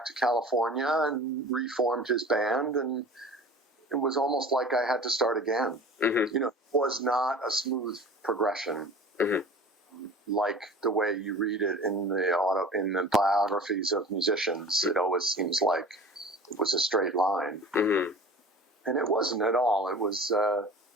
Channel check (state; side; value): normal; both; correlation 0.40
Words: to California and reformed his band, and it was almost like I had to start again. Mm-hmm. It was not a smooth progression. Mm-hmm. Like the way you read it in the biographies of musicians. It always seems like it was a straight line. Mm-hmm. And it wasn't at all. It was